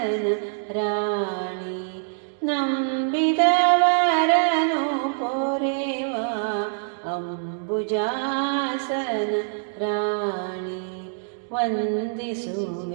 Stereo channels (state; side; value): silent; left; digital silence